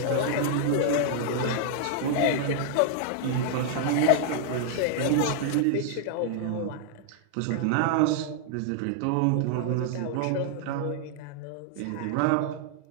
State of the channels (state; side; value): different; both; correlation -0.01